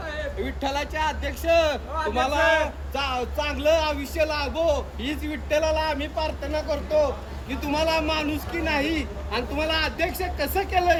विठ्ठलाचे अध्यक्ष तुम्हाला चांगलं आयुष्य लाभो हीच विठ्ठलाला आम्ही प्रार्थना करतो की तुम्हाला माणुसकी नाही आणि तुम्हाला अध्यक्ष कसं केलं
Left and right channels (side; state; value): both; identical; correlation 1.00